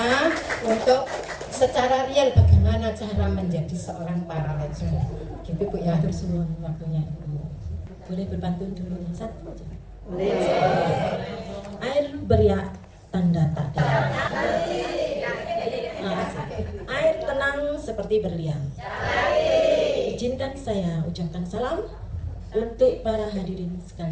untuk secara real bagaimana cara menjadi seorang paralegal. Gitu Bu ya. Atur semua waktunya Ibu. Boleh berbantu dulu satu aja. Boleh. Air beriak tanda tak ada. Air tenang seperti berlian. Izinkan saya ucapkan salam untuk para hadirin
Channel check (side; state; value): both; identical; correlation 1.00